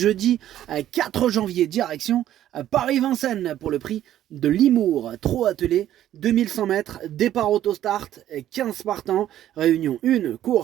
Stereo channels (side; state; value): left; quieter; 12.2 dB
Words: 4 janvier, direction Paris-Vincennes pour le prix de Limours, trop attelé, 2100 mètres, départ autostart, 15 partants, réunion 1,